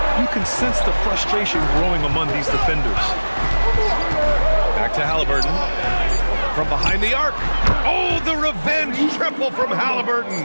you can sense the frustration growing among these defenders. Back to Halliburton. From behind the arc. Oh, the revenge triple from Halliburton.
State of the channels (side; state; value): both; inverted; correlation -1.00